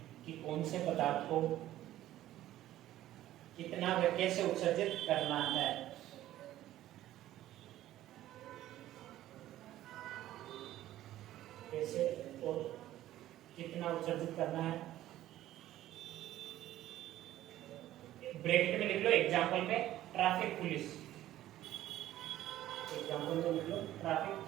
कि कौन से पदार्थ को कितना व कैसे उत्सर्जित करना है। कैसे और कितना उत्सर्जित करना है, ब्रैकेट में लिख लो एग्जाम्पल में ट्रैफिक पुलिस, एग्जाम्पल में लिख लो ट्रैफिक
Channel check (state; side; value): quieter; left; 13.9 dB